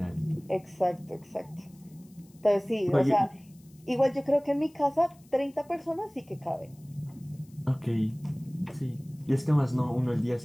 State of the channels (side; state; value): left; noise; hiss, 29 dB below the sound